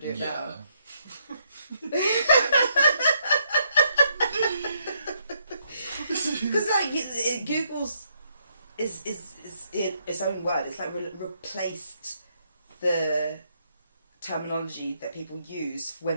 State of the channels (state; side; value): inverted; both; correlation -0.74